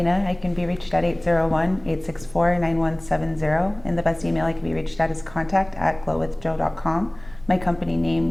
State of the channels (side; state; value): right; noise; rumble, 22 dB below the sound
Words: I can be reached at 801-864-9170, and the best email I can be reached at is contact@glowwithjoe.com. My company